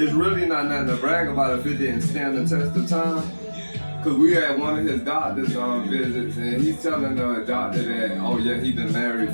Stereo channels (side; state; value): both; inverted; correlation -1.00